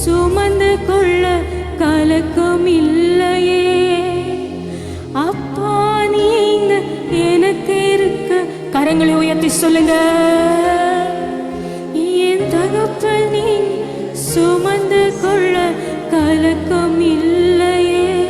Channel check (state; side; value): identical; both; correlation 1.00